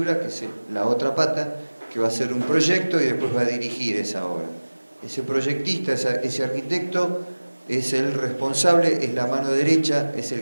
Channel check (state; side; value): inverted; both; correlation -1.00